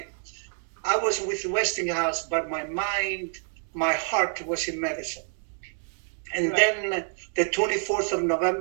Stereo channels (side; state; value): left; silent; 60 dB below the other